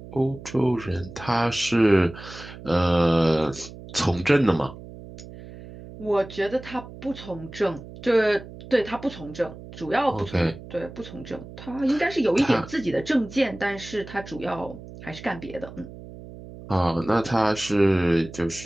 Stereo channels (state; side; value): noise; right; hum, 15 dB below the sound